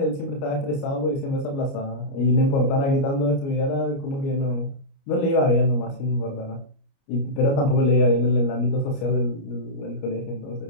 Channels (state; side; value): late; right; 29 ms